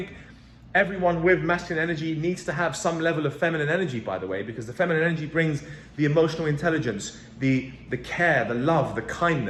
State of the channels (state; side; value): identical; both; correlation 1.00